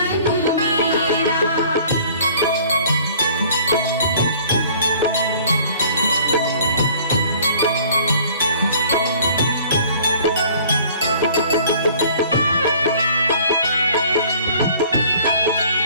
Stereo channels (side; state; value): both; inverted; correlation -0.52